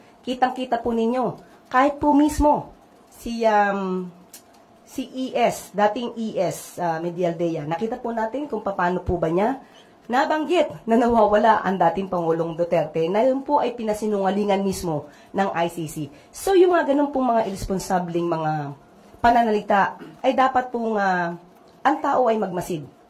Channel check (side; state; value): both; identical; correlation 1.00